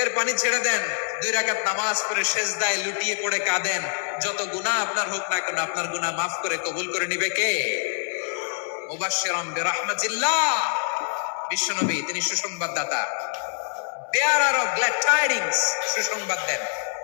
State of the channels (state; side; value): silent; right; 62 dB below the other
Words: পানি ছেড়ে দেন, 2 রাকাত নামাজ পড়ে সেজদায় লুটিয়ে পড়ে কাঁদেন। যত গুনাহ আপনার হোক না কেন, আপনার গুনাহ মাফ করে কবুল করে নিবে কে? মুবাশশিরাম বিরহমাতিল্লাহ, বিশ্বনবী তিনি সুসংবাদদাতা, বেয়ারার অফ গ্ল্যাড টাইডিংস, সুসংবাদ দেন।